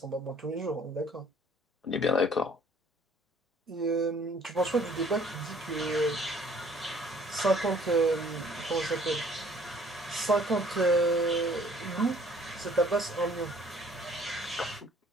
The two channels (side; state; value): both; normal; correlation 0.57